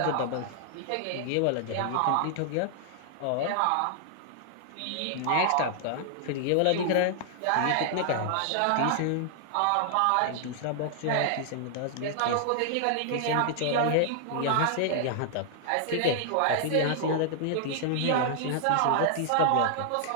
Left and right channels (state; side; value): different; both; correlation -0.01